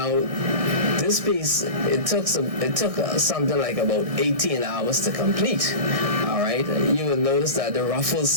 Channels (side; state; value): left; late; 1.6 ms